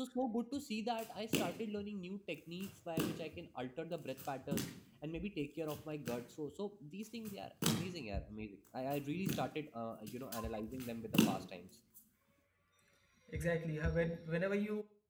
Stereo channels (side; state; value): both; identical; correlation 1.00